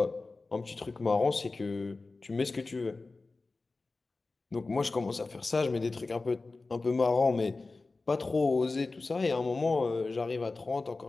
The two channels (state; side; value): quieter; right; 3.6 dB